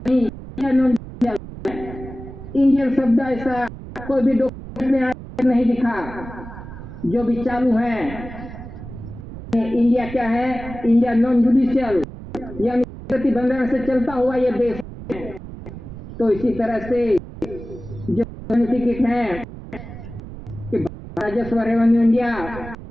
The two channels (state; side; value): noise; right; rumble, 13 dB below the sound